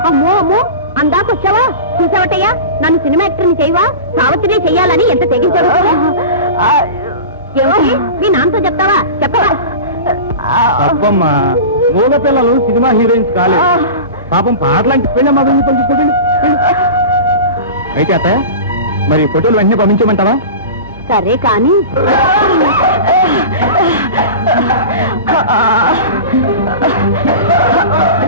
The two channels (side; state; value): both; inverted; correlation -0.31